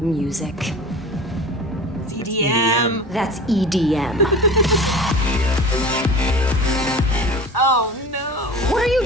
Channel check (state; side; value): normal; both; correlation 0.37